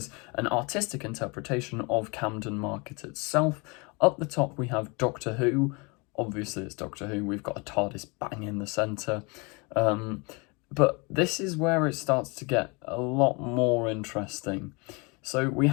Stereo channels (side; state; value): right; quieter; 29.3 dB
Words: an artistic interpretation of Camden Market itself. Up the top we have Doctor Who. Obviously it's Doctor Who, we've got a TARDIS bang in the centre. But this is where it starts to get a lot more interesting. So we